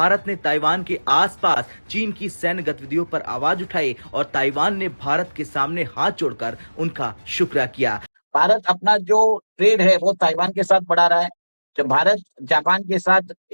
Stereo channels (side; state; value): both; inverted; correlation -1.00